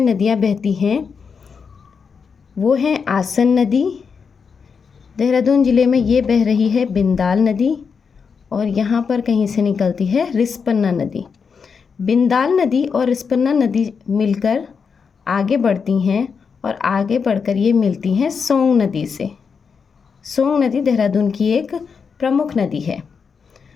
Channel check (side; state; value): right; quieter; 5.8 dB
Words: नदियाँ बहती हैं वो हैं आसन नदी। देहरादून ज़िले में ये बह रही है बिंदाल नदी और यहाँ पर कहीं से निकलती है रिस्पन्ना नदी। बिंदाल नदी और रिस्पन्ना नदी मिलकर आगे बढ़ती हैं और आगे बढ़कर ये मिलती हैं सोंग नदी से। सोंग नदी देहरादून की एक प्रमुख नदी है।